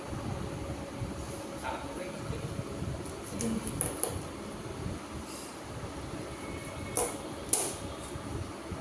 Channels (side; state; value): both; identical; correlation 1.00